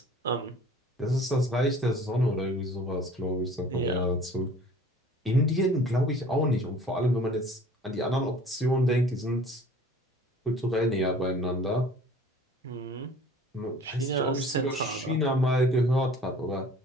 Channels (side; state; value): both; normal; correlation 0.48